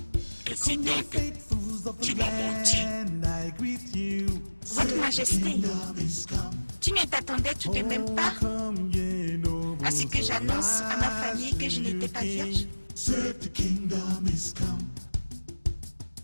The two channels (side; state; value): both; inverted; correlation -1.00